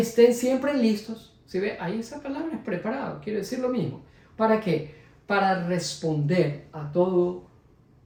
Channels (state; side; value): identical; both; correlation 1.00